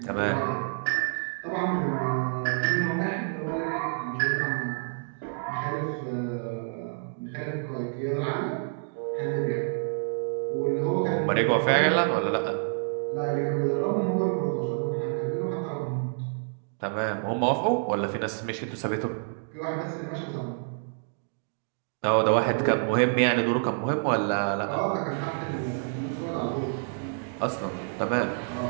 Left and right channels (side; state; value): left; silent; digital silence